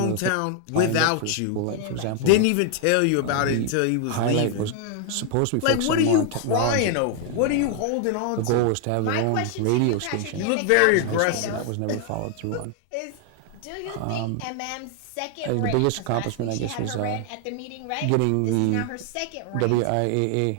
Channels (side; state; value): both; different; correlation 0.00